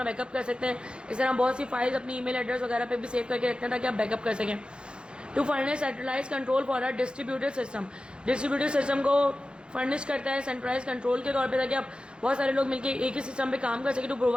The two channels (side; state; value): left; late; 0.053 ms